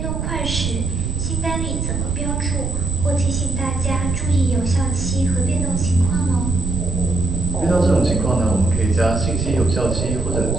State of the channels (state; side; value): noise; right; rumble, 3 dB below the sound